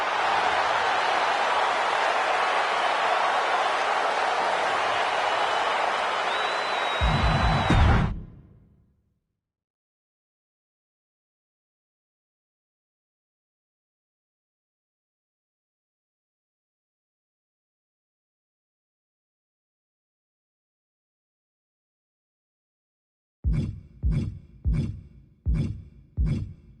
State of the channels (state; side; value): identical; both; correlation 1.00